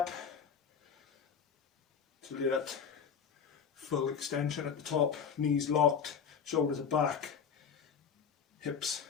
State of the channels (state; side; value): quieter; right; 6.9 dB